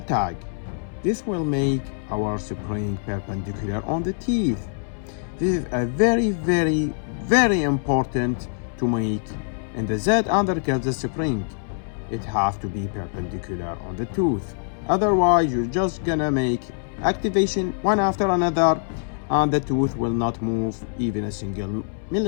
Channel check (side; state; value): right; silent; 63 dB below the other